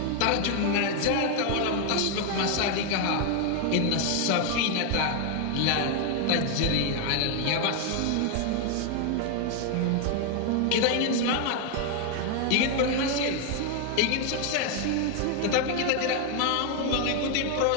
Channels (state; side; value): different; both; correlation 0.00